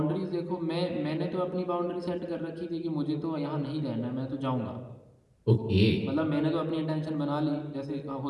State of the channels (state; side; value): identical; both; correlation 1.00